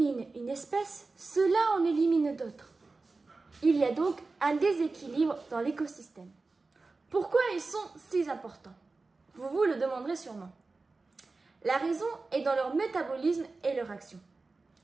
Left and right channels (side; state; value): left; quieter; 3.7 dB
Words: une espèce, cela en élimine d'autres. Il y a donc un déséquilibre dans l'écosystème. Pourquoi ils sont si importants? Vous vous le demanderez sûrement. La raison est dans leur métabolisme et leur action.